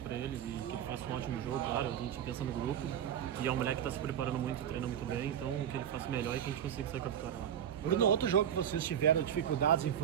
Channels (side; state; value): left; quieter; 9.5 dB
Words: para ele e que ele faça um ótimo jogo, claro. A gente pensa no grupo, que é um moleque que está se preparando muito, treina muito bem, então que ele faça melhor e que a gente consiga sair com a vitória lá. Bruno, outro jogo que vocês tiveram dificuldades em